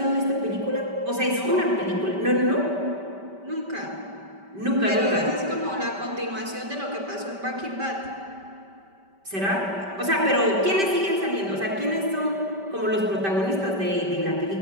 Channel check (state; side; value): late; left; 5.1 ms